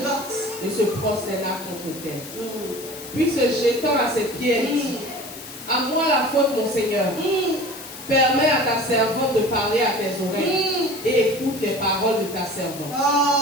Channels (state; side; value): noise; left; hiss, 14 dB below the sound